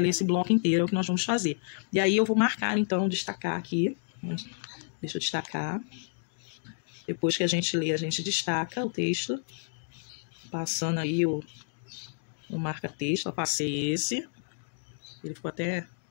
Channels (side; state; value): right; silent; digital silence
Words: esse bloco inteiro, é o que nós vamos fazer. E aí eu vou marcar, então, destacar aqui. Deixa eu destacar. Depois que a gente lê, a gente destaca o texto. Passando aí o marca-texto. Eu passei esse. Ele ficou até...